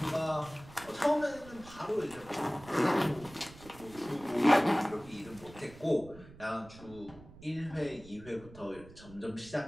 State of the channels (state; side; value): noise; right; rumble, 19 dB below the sound